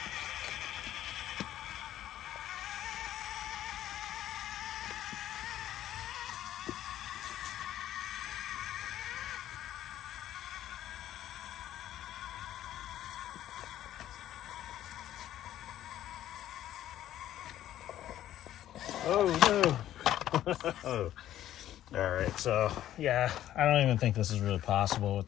Oh no. Alright, so yeah, I don't even think this is really possible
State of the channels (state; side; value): quieter; right; 12.5 dB